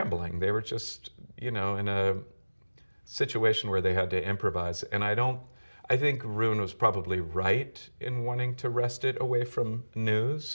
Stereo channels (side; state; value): both; inverted; correlation -1.00